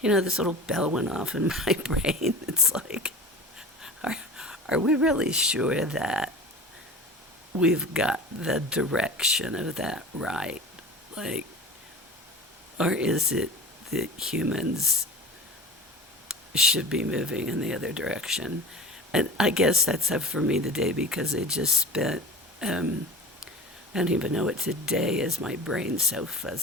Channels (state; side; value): normal; both; correlation 0.35